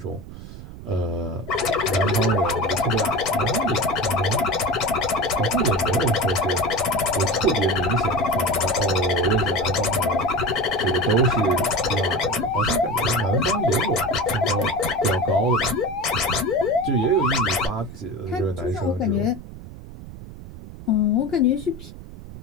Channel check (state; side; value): noise; right; rumble, 14 dB below the sound